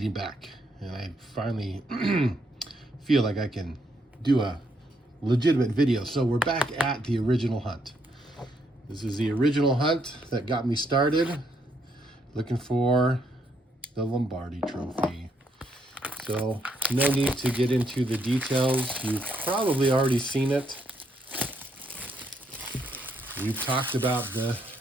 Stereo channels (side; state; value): both; normal; correlation 0.75